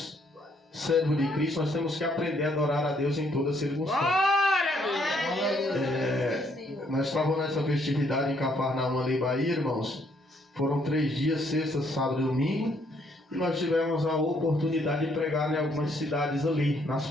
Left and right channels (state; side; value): normal; both; correlation 0.69